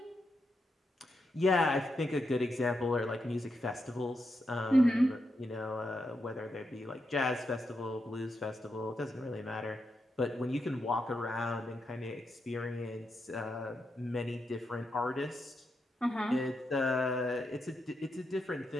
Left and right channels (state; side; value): normal; both; correlation 0.84